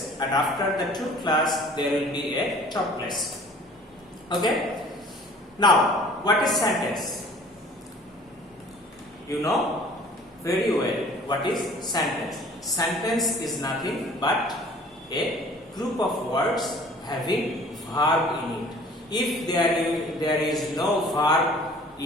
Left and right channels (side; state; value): both; normal; correlation 0.50